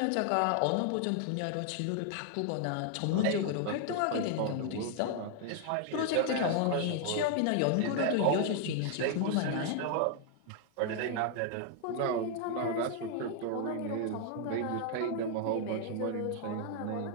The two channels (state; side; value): different; both; correlation 0.00